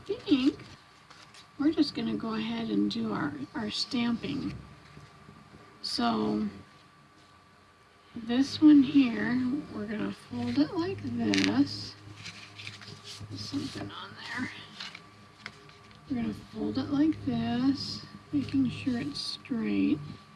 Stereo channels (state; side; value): identical; both; correlation 1.00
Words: think, we're just going to go ahead and do our stamping. So, this one here, we're going to fold it like this. There's something on there. We're going to fold it like this, making sure it's straight.